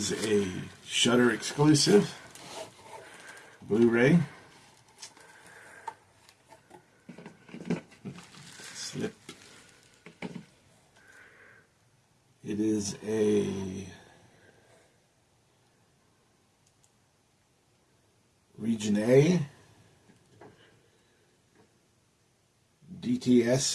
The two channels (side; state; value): both; identical; correlation 1.00